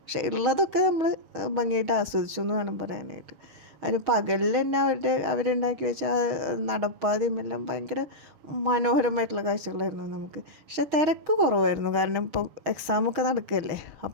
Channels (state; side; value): late; left; 6.4 ms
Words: പക്ഷെ ഉള്ളതൊക്കെ നമ്മൾ ഭംഗിയായിട്ട് ആസ്വദിച്ചു എന്ന് വേണം പറയാനായിട്ട്. അതിന് പകലിൽ തന്നെ അവരുണ്ടാക്കി വെച്ച നടപ്പാതയും എല്ലാം ഭയങ്കര മനോഹരമായിട്ടുള്ള കാഴ്ചകളായിരുന്നു നമുക്ക്. പക്ഷെ തിരക്ക് കുറവായിരുന്നു, കാരണം ഇപ്പോൾ എക്സാമൊക്കെ നടക്കുകയല്ലേ.